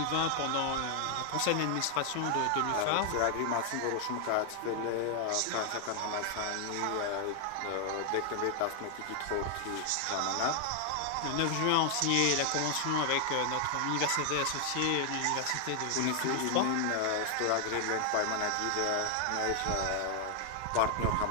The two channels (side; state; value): both; different; correlation 0.00